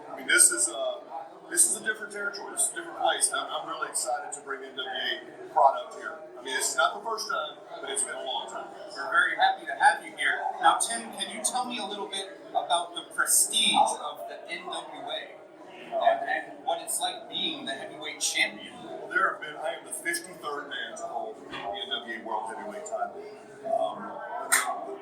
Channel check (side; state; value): both; identical; correlation 1.00